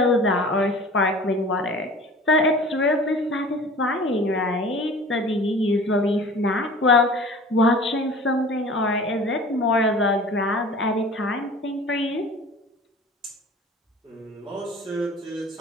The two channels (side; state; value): both; normal; correlation 0.43